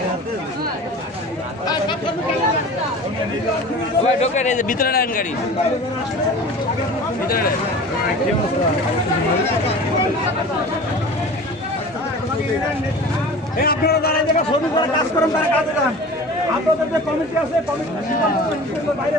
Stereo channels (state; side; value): normal; both; correlation 0.38